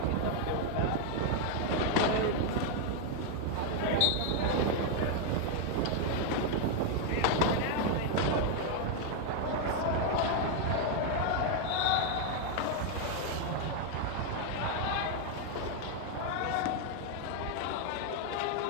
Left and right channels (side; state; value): both; different; correlation 0.00